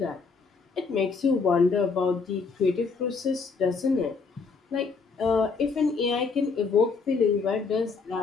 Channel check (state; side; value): quieter; right; 4.8 dB